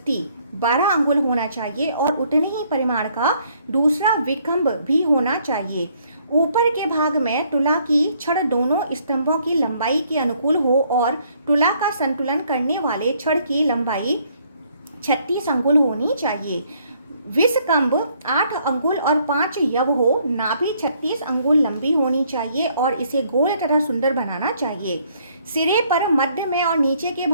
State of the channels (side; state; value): both; inverted; correlation -0.66